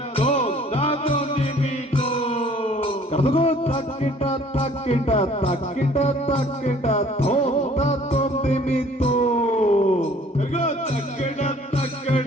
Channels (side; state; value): both; normal; correlation 0.55